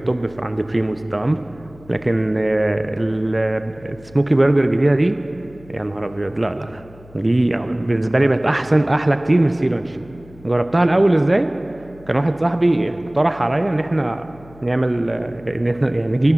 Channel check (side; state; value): left; noise; hum, 23 dB below the sound